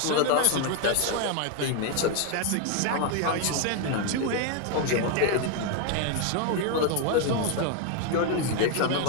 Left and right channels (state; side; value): different; both; correlation 0.01